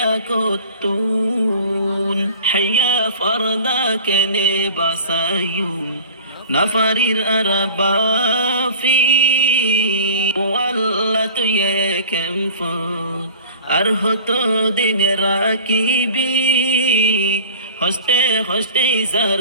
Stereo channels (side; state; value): both; inverted; correlation -0.42